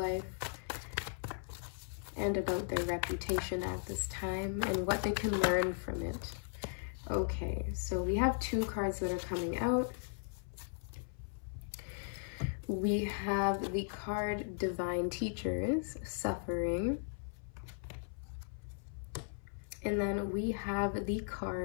and about their reputation at this time and what they can learn from it. Okay, so we have two cards that are coming out. We have the card Divine Teachers, Suffering. And then we have the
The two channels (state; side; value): silent; right; 53 dB below the other